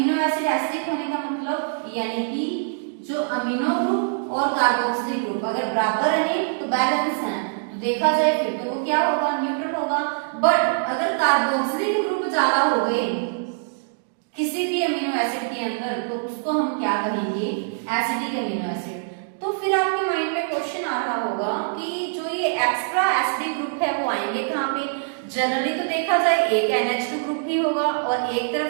एसिड एसिडिक होने का मतलब यानी कि जो अमीनो ग्रुप और कार्बोक्सिलिक ग्रुप अगर बराबर रहे तो बैलेंस है, तो देखा जाए फिर तो वो क्या होगा, न्यूट्रल होगा। बट अगर कार्बोक्सिलिक ग्रुप ज्यादा हो गए किसी भी अमीनो एसिड के अंदर, तो उसको हम क्या कहेंगे, एसिडिक अमीनो एसिड। तो फिर आपके माइंड में क्वेश्चन आ रहा होगा कि जो ये एक्स्ट्रा एसिडिक ग्रुप है वो आएंगे कहाँ पे। जनरली तो देखा जाए एक NH2 ग्रुप भी होगा और एक तरफ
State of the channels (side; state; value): left; silent; digital silence